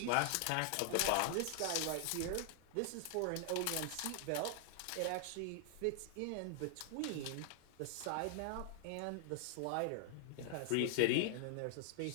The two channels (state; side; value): different; both; correlation 0.00